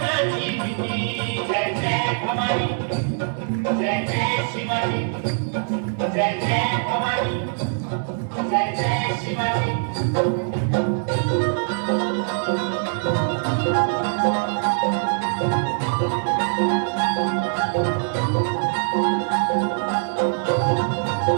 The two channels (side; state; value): left; silent; 64 dB below the other